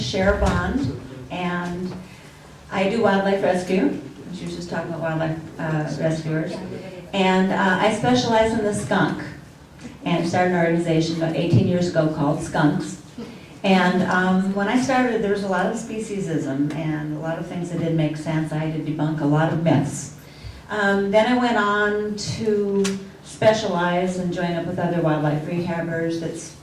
Bond, and I do wildlife rescue. She was just talking about wildlife rescuers. And I specialize in the skunk, and started an organization about 18 years ago called Skunks. And when I started, there was a lot of speciesism and a lot of things that didn't make sense. I had to debunk a lot of myths. Then I went on to specialize and join up with other wildlife rehabbers.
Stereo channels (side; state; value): both; identical; correlation 1.00